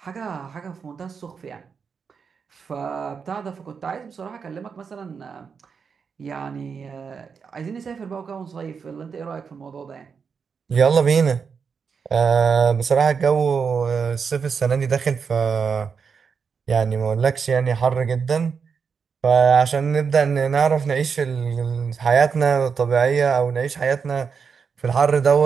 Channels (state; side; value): quieter; left; 6.0 dB